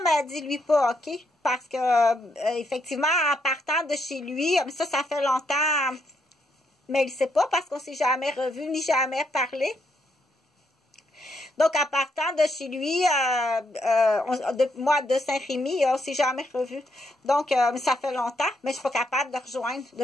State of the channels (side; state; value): both; normal; correlation 0.76